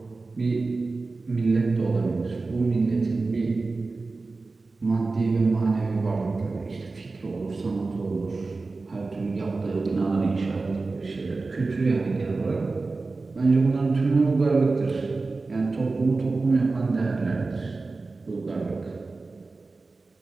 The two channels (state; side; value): quieter; left; 3.7 dB